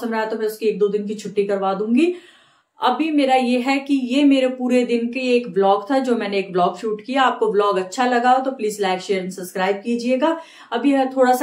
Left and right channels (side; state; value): both; identical; correlation 1.00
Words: रहा तो मैं उसकी 1-2 दिन की छुट्टी करवा दूंगी। अभी मेरा ये है कि ये मेरे पूरे दिन के एक व्लॉग था, जो मैंने एक व्लॉग शूट किया। आपको व्लॉग अच्छा लगा हो तो please like share and subscribe कीजिएगा। अभी थोड़ा